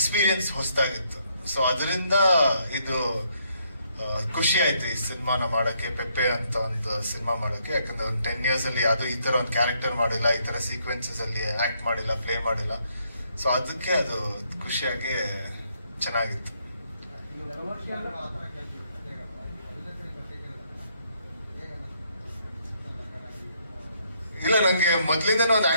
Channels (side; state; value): both; inverted; correlation -0.72